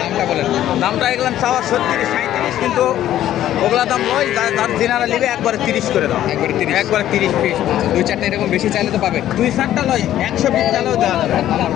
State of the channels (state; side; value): quieter; right; 12.4 dB